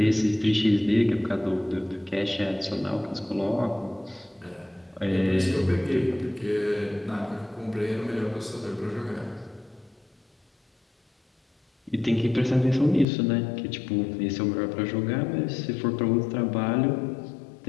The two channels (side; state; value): right; drops out; at 13.1 s